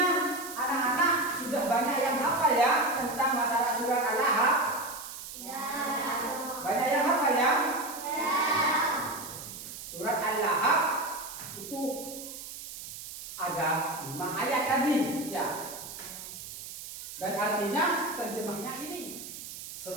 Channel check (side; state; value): right; noise; hiss, 11 dB below the sound